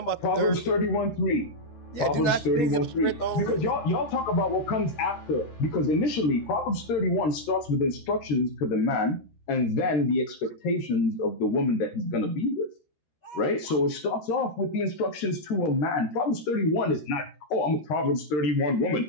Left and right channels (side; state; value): right; late; 13 ms